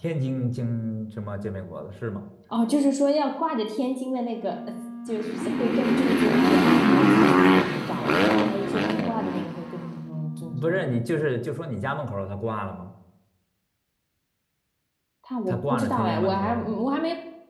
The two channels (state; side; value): identical; both; correlation 1.00